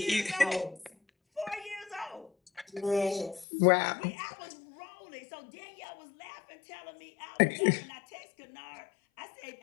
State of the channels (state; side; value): drops out; right; at 3.5 s